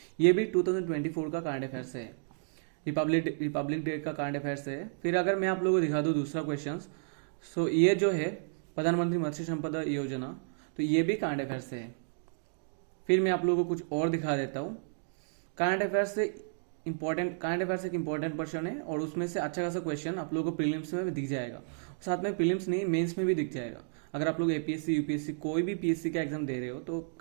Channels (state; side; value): silent; left; digital silence